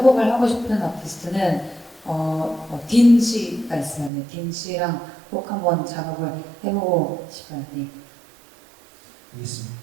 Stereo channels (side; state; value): left; drops out; at 4.1 s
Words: 하고 싶은 아티스트는 딘 씨가 있어요. 네, 딘 씨랑 꼭 한번 작업을 해보고 싶어요. 네. 알겠습니다.